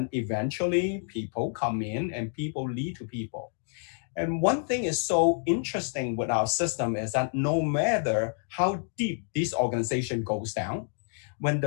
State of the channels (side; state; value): right; silent; 57 dB below the other